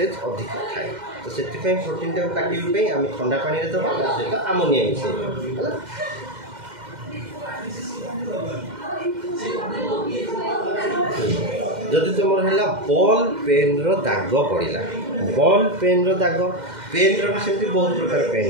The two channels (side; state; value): left; late; 2.1 ms